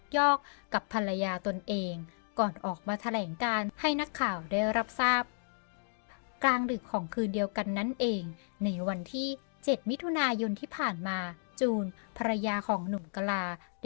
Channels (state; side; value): silent; right; digital silence